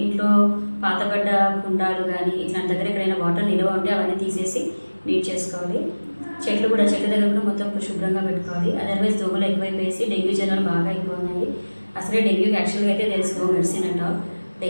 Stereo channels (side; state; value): both; inverted; correlation -1.00